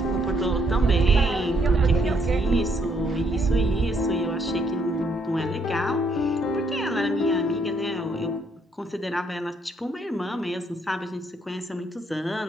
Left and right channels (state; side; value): normal; both; correlation 0.71